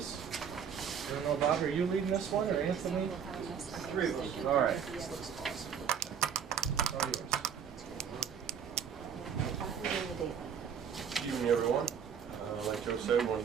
I don't know, Bob, are you leading this one, or Anthony? Three of us. All right. This looks awesome. All yours. Good evening, everyone. Like Joe said, we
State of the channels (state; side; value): quieter; left; 7.6 dB